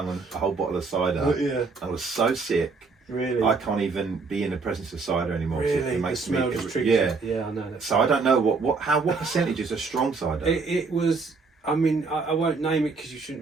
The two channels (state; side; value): quieter; left; 4.4 dB